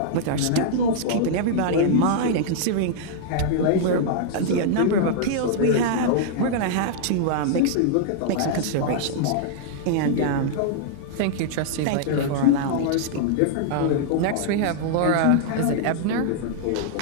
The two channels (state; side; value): different; both; correlation -0.01